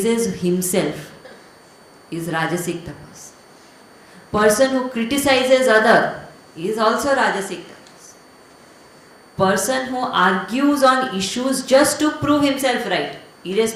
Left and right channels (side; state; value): both; identical; correlation 1.00